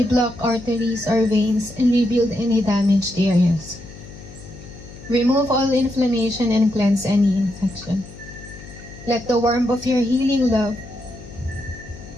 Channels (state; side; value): noise; left; hum, 16 dB below the sound